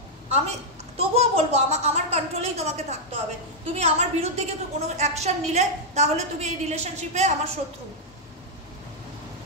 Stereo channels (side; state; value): both; normal; correlation -0.04